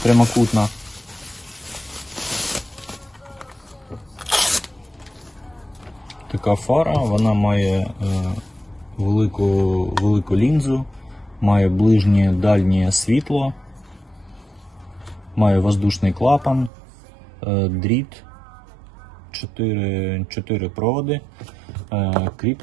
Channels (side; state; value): left; drops out; at 16.7 s